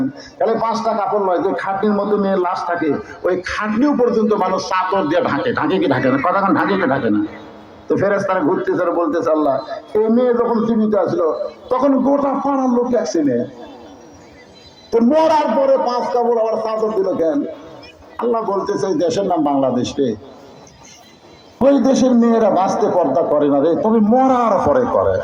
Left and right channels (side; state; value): both; identical; correlation 1.00